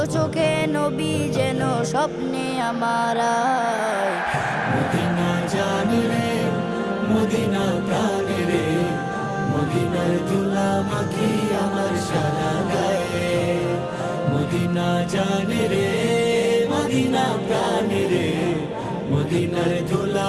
চোখে নবী যেন স্বপ্নে আমার আয়। মদিনা জানে রে, মদিনা প্রাণে রে, মদিনার ধুলা মাখি আমার সারা গায়ে। মদিনা জানে রে, মদিনা প্রাণে রে, মদিনার ধুলা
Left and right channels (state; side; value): identical; both; correlation 1.00